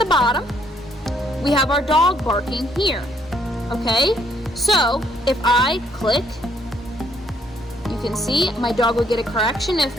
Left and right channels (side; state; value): both; normal; correlation 0.69